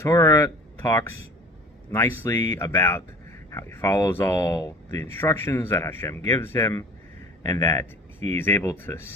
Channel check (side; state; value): both; normal; correlation 0.44